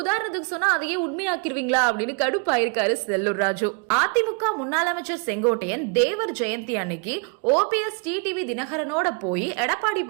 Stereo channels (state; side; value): quieter; left; 33.7 dB